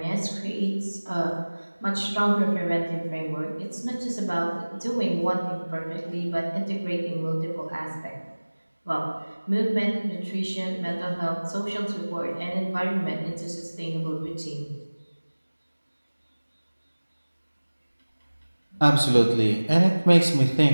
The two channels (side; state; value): both; inverted; correlation -1.00